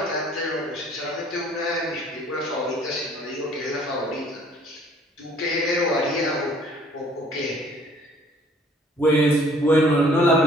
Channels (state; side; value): normal; both; correlation 0.57